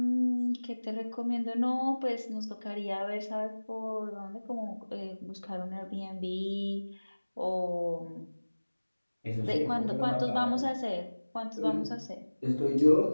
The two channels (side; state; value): both; inverted; correlation -1.00